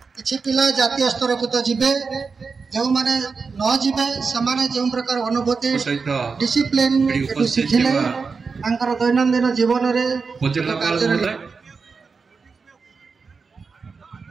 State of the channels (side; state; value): left; quieter; 4.9 dB